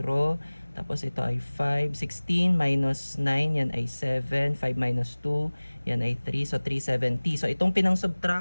Tapos ito ay 5. 16 minus 9, yan ay 7. 5 minus 2, yan ay 3. So, 370. So, itong pinang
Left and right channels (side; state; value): both; inverted; correlation -1.00